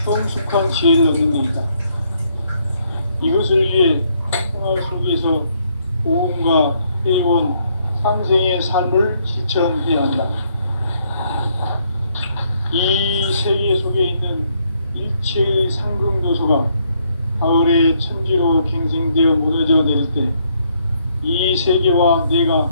성숙한 지혜를 얻는 데이다. 이것을 위해 평화 속에서 고음과 회원, 상생의 삶을 실천해야 한다. 이 세계 속에 있는 일체의 상승도소가 가을의 천지로 갱생되어 무너져 내릴 때 이 세계와 내가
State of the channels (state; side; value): inverted; both; correlation -0.71